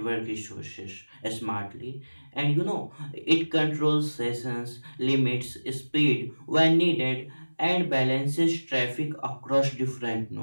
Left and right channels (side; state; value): both; inverted; correlation -1.00